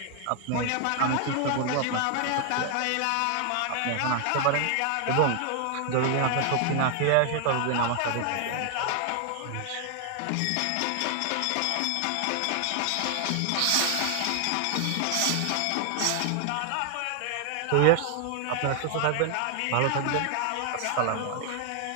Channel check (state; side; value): different; both; correlation 0.00